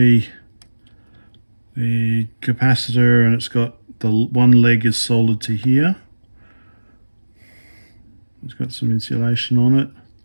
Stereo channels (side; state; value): both; inverted; correlation -1.00